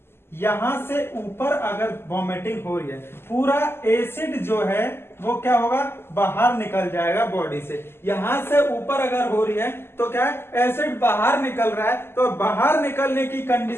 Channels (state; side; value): late; right; 0.12 ms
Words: यहां से ऊपर अगर वॉमिटिंग हो रही है, पूरा एसिड जो है वो क्या होगा, बाहर निकल जाएगा बॉडी से। यहां से ऊपर अगर हो रही है तो क्या है, एसिड बाहर निकल रहा है, तो बाहर निकलने की